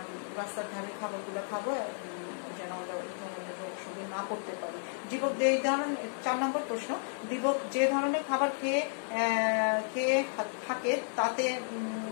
রাস্তার ধারে খাবারগুলো খাবো, যেন আমরা এই ধরনের রোগ শরীরে না করতে পারি। দীপক এই ধরনের 4 নম্বর প্রশ্ন, দীপক যে ধরনের খাবার খেয়ে থাকে তাতে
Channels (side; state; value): right; silent; digital silence